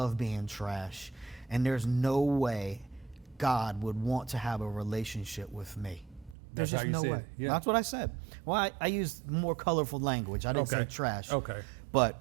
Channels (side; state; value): left; drops out; at 6.4 s